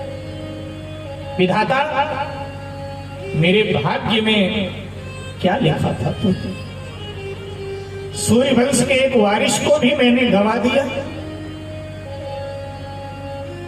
विधाता, मेरे भाग्य में क्या लिखा था तू? सूर्य वंश के एक वारिस को भी मैंने गंवा दिया।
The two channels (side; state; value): both; identical; correlation 1.00